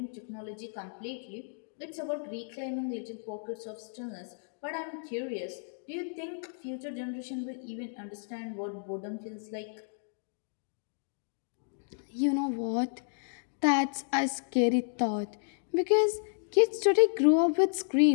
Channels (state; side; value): silent; right; digital silence